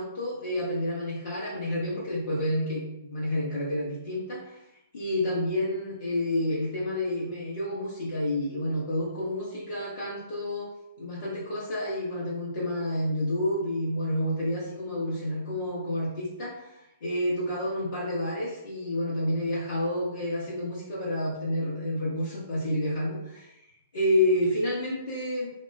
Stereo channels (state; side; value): inverted; both; correlation -0.67